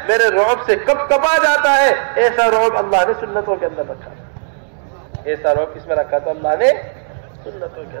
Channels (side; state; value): left; silent; 69 dB below the other